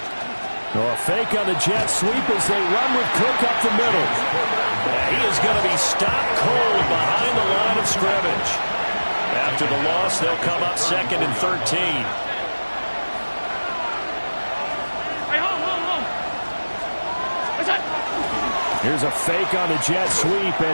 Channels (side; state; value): both; inverted; correlation -1.00